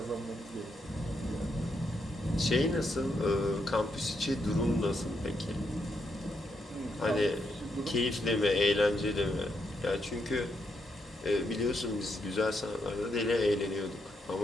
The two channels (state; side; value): normal; both; correlation 0.80